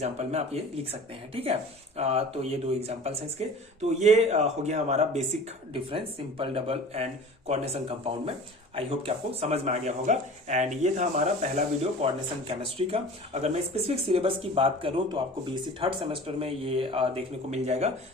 में आप ये लिख सकते हैं। ठीक है, तो ये दो एग्जांपल्स हैं इसके। तो ये हो गया हमारा basic difference simple, double and coordination compound में। आई होप कि आपको समझ में आ गया होगा। एंड ये था हमारा पहला वीडियो कोऑर्डिनेशन केमिस्ट्री का। अगर मैं स्पेसिफिक सिलेबस की बात करूं तो आपको बीएससी थर्ड सेमेस्टर में ये देखने को मिल जाएगा।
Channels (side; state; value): both; normal; correlation 0.41